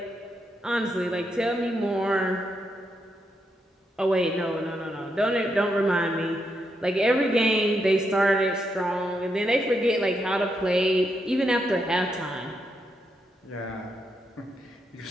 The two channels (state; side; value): normal; both; correlation 0.81